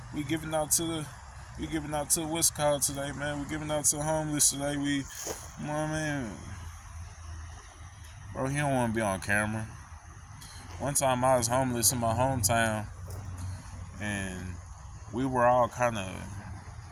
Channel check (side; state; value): both; identical; correlation 1.00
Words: giving out to what's called today, man. We giving out to the homeless today. You know what I mean? Bro, he don't want to be on camera. One time I was homeless in my hometown, and we were all